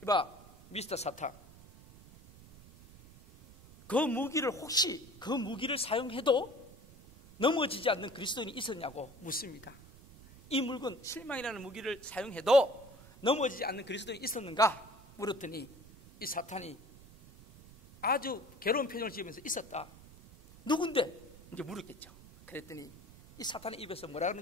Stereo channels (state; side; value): noise; right; rumble, 21 dB below the sound